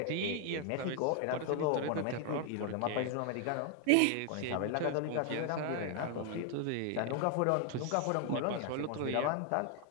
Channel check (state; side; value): different; both; correlation 0.00